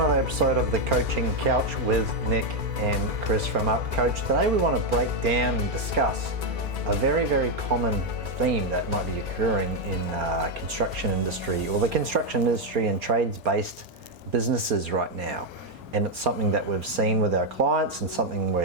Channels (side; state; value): left; late; 2.4 ms